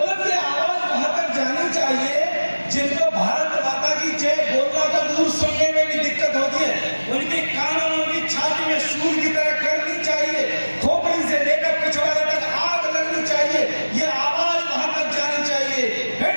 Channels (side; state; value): both; inverted; correlation -1.00